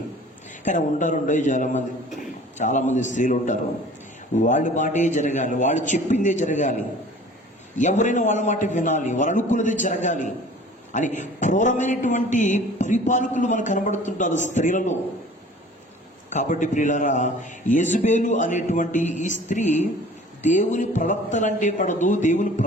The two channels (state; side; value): normal; both; correlation 0.47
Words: కానీ ఉంటారు చాలామంది స్త్రీలు ఉంటారు. వాళ్ళ మాటే జరగాలి, వాళ్ళు చెప్పిందే జరగాలి, ఎవరైనా వాళ్ళ మాట వినాలి, వాళ్ళు అనుకున్నదే జరగాలి అని క్రూరమైనటువంటి పరిపాలకులు మనకు కనబడుతుంటారు స్త్రీలలో. కాబట్టి ప్రియులారా, యెజబెలు అనేటువంటి ఈ స్త్రీ దేవుని ప్రవక్తలంటే పడదు, దేవుని